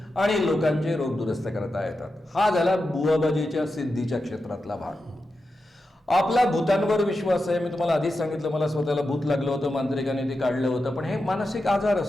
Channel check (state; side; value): normal; both; correlation 0.90